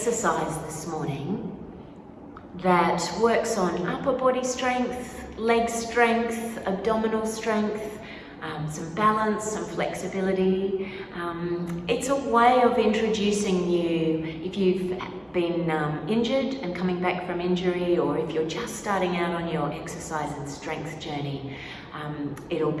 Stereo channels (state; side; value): identical; both; correlation 1.00